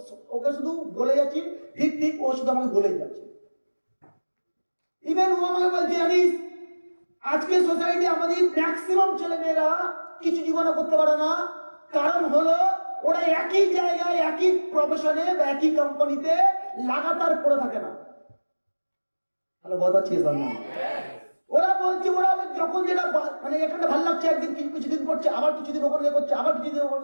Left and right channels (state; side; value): inverted; both; correlation -1.00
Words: ওকে শুধু বলে যাচ্ছি ঠিক ঠিক, ও শুধু আমাকে বলে যাচ্ছে। ইভেন ও আমাকে বলছে জানিস আজকে সোসাইটি আমাদের ম্যাক্সিমাম ছেলে মেয়েরা কিছু জীবনে করতে পারে না, কারণ হলো ওরা একই জায়গায় একই প্রফেশনে বা একই কোম্পানিতে লাগাতার পড়ে থাকে না। তাহলে বোঝাচ্ছি ওরা বলছে ওরা যখন যেটা মানে এখানে ভালো লাগছে একদিন কিছুদিন করছে, আবার কিছুদিন ওখানে করছে, আবার কিছুদিন ওখানে